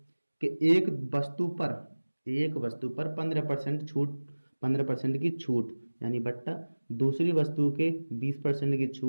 कि एक वस्तु पर 15% की छूट यानी बट्टा दूसरी वस्तु के 20% की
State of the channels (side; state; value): both; inverted; correlation -1.00